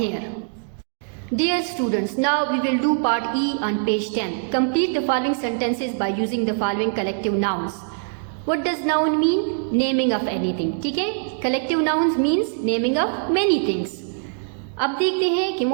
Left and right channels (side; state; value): left; silent; digital silence